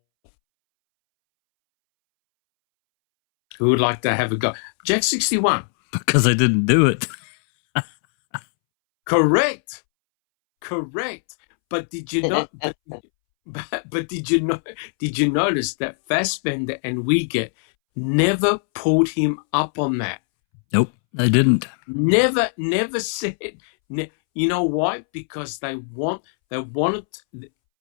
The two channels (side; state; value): right; silent; 65 dB below the other